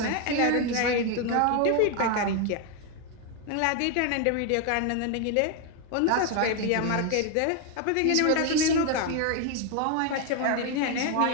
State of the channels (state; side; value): different; both; correlation 0.01